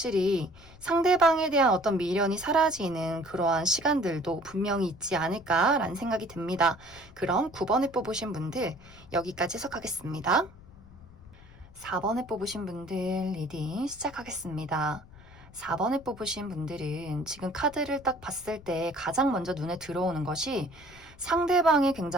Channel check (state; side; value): noise; left; rumble, 22 dB below the sound